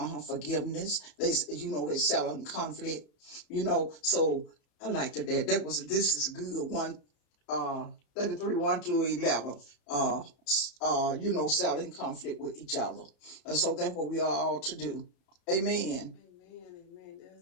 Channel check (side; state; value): right; late; 34 ms